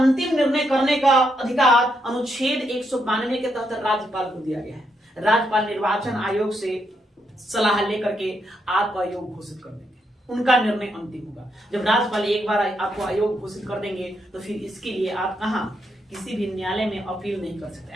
निर्णय करने का अधिकार अनुच्छेद 192 के तहत राज्यपाल को दिया गया है। राज्यपाल निर्वाचन आयोग से सलाह लेकर के आपको अयोग्य घोषित कर देंगे, उनका निर्णय अंतिम होगा। जब राज्यपाल एक बार आपको अयोग्य घोषित कर देंगे तो फिर इसके लिए आप कहां, किसी भी न्यायालय में अपील नहीं कर सकते।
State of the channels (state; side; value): normal; both; correlation 0.79